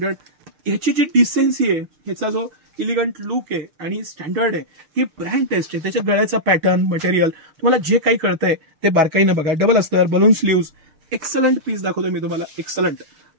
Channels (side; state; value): left; late; 6.6 ms